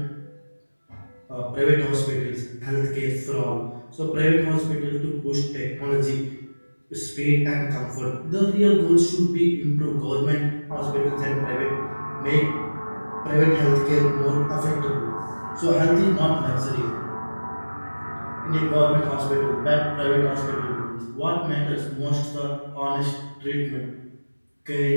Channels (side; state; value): both; inverted; correlation -1.00